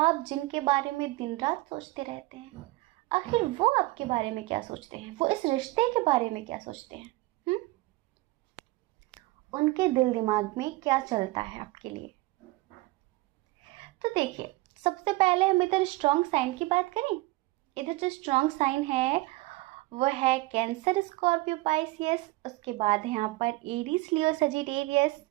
जिनके बारे में दिन रात सोचते रहते हैं, आखिर वो आपके बारे में क्या सोचते हैं, वो इस रिश्ते के बारे में क्या सोचते हैं, उनके दिल दिमाग में क्या चलता है आपके लिए। तो देखिए, सबसे पहले हम इधर स्ट्रॉन्ग साइन की बात करें। इधर जो स्ट्रॉन्ग साइन है वो है कैंसर, स्कॉर्पियो, पाइसियस। उसके बाद है यहाँ पर एरीज, लियो, सजिटेरियस।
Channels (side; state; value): left; quieter; 20.9 dB